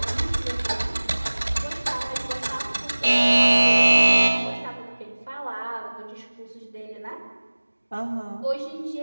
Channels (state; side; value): inverted; both; correlation -1.00